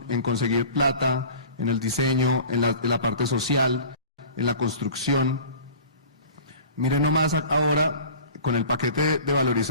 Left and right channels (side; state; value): both; inverted; correlation -0.41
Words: en conseguir plata, en el diseño, en la parte social, en la construcción. Miren nomás ahora, con el paquete de